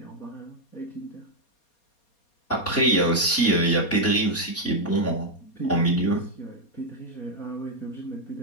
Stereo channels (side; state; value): right; late; 4.2 ms